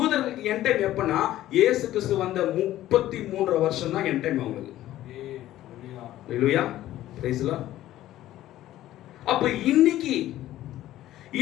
என் டைம் எப்பனா இயேசு கிறிஸ்து வந்த 33 வருஷம் தான் என் டைம் அவங்களுக்கு. ஹல்லேலூயா. Praise the Lord. அப்ப இன்னைக்கு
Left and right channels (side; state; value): right; quieter; 14.1 dB